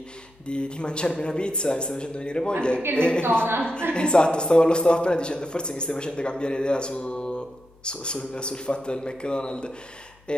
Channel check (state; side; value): noise; left; hum, 30 dB below the sound